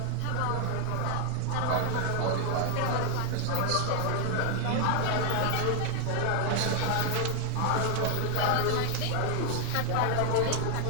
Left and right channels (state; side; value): different; both; correlation 0.00